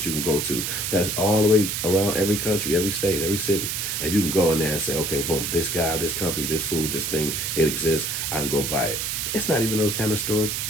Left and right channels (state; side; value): noise; right; hiss, 2 dB below the sound